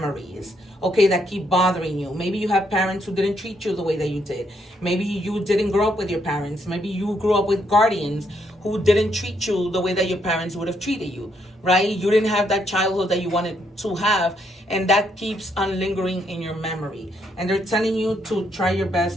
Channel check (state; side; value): normal; both; correlation 0.74